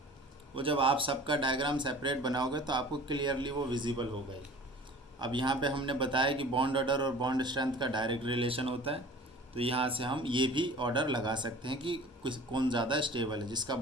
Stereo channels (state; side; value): normal; both; correlation 0.44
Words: वो जब आप सबका डायग्राम सेपरेट बनाओगे तो आपको क्लियरली वो विजिबल होगा ही। अब यहाँ पे हमने बताया कि बॉन्ड ऑर्डर और बॉन्ड स्ट्रेंथ का डायरेक्ट रिलेशन होता है, तो यहाँ से हम ये भी ऑर्डर लगा सकते हैं कि कौन ज़्यादा स्टेबल है। जिसका